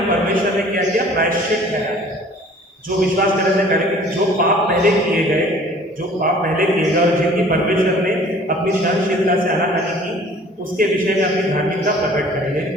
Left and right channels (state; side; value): normal; both; correlation 0.50